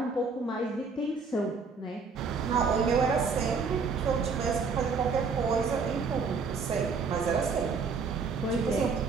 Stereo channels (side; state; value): left; quieter; 4.9 dB